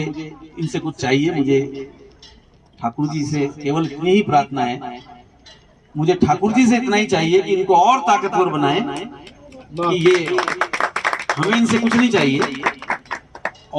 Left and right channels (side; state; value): both; identical; correlation 1.00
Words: इनसे कुछ चाहिए। मुझे ठाकुर जी से केवल इतनी ही प्रार्थना है, मुझे ठाकुर जी से इतना ही चाहिए कि इनको और ताकतवर बनाएं, कि ये हमें इनसे कुछ नहीं चाहिए।